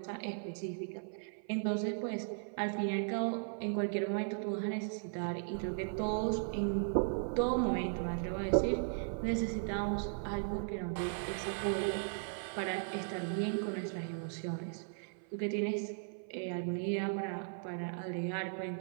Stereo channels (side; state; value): left; silent; 53 dB below the other